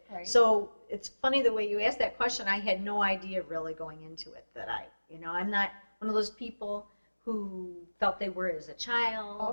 Right. So it's funny the way you asked that question. I had no idea really going into it that I'm not one of those people who felt they were as a child.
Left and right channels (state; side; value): inverted; both; correlation -1.00